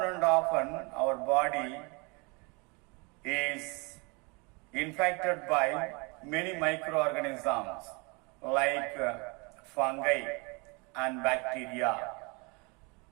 and often, our body is infected by many microorganisms like fungi and bacteria.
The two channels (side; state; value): left; quieter; 29.8 dB